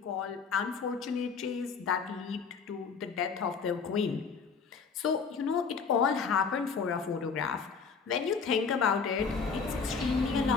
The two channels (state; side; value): quieter; right; 5.6 dB